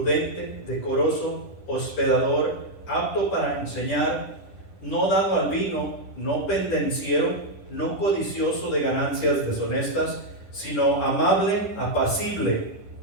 decoroso, hospedador, apto para enseñar, no dado al vino, no pendenciero, no codicioso de ganancias deshonestas, sino amable, apacible,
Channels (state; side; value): late; right; 10 ms